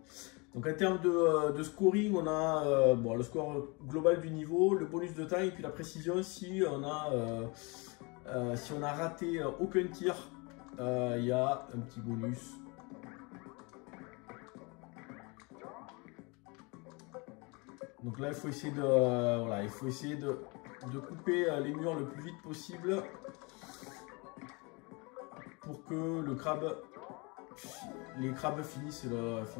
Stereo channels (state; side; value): quieter; right; 28.9 dB